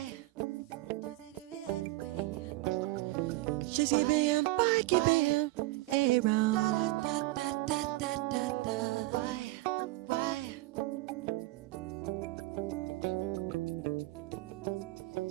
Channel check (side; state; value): left; quieter; 19.9 dB